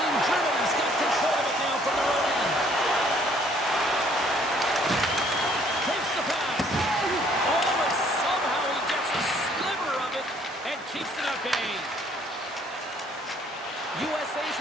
Germany's got control of it now from their own end. Takes the pass. Oh, and somehow he gets a sliver of it and keeps it at bay. USA's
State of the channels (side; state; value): both; normal; correlation 0.62